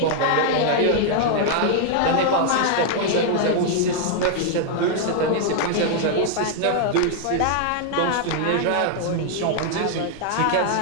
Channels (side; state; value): both; different; correlation 0.00